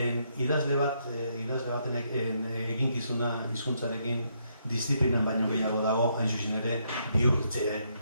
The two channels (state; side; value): inverted; both; correlation -0.75